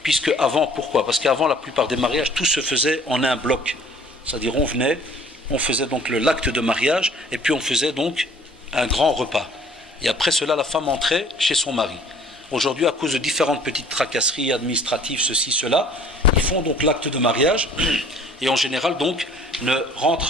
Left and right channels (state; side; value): normal; both; correlation 0.53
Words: Puisque avant, pourquoi? Parce qu'avant, la plupart des mariages, tout se faisait en un bloc. C'est-à-dire, on faisait donc l'acte de mariage, et puis on faisait donc un grand repas. Et après cela, la femme entrait chez son mari. Aujourd'hui, à cause de différentes petites tracasseries administratives, ceci, cela, ils font donc l'acte de mariage, et en général, donc,